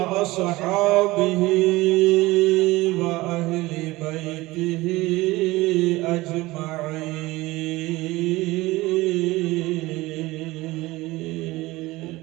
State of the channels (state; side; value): quieter; left; 19.8 dB